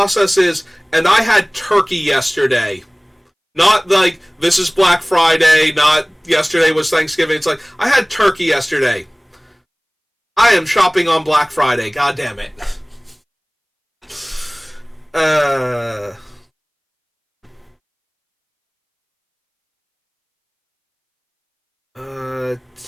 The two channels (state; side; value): identical; both; correlation 1.00